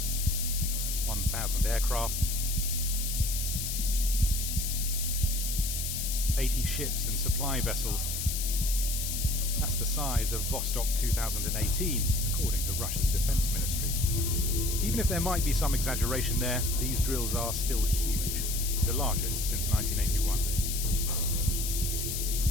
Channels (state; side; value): noise; left; hiss, 3 dB below the sound